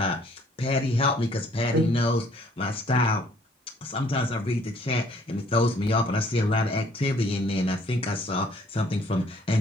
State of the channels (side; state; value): both; normal; correlation 0.60